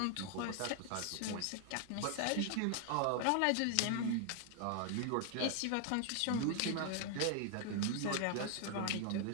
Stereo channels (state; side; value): different; both; correlation 0.00